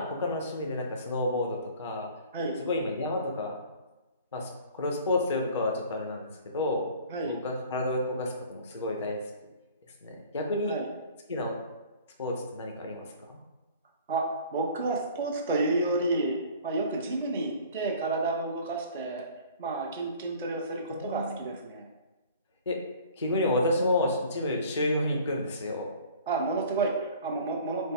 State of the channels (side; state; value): both; inverted; correlation -0.48